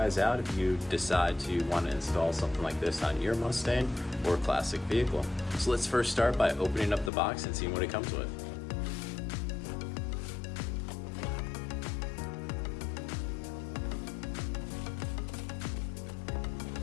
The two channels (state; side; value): drops out; right; at 7.1 s